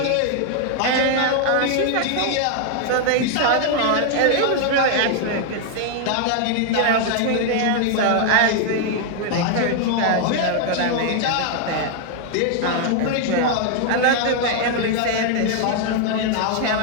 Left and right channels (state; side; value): different; both; correlation 0.00